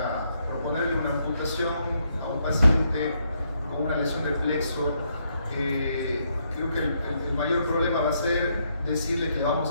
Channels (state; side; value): inverted; both; correlation -0.75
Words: proponerle una amputación a un paciente con una lesión de plexo, creo que el mayor problema va a ser decirle que le vamos